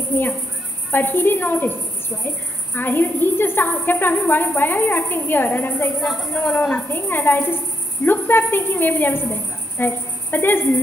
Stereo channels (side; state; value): both; normal; correlation 0.77